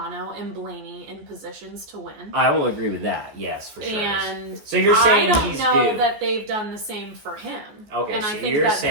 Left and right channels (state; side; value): late; left; 14 ms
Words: and Blaney in positions to win. I will agree with that. Yes, for sure. And so you're saying I don't he's know due. that they've done the same for him. Okay, and so I think you're that saying